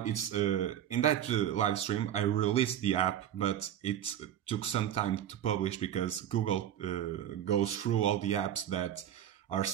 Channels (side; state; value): left; quieter; 10.6 dB